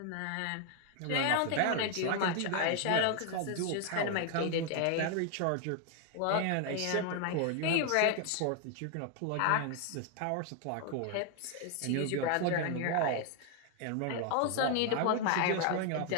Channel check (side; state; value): both; different; correlation 0.00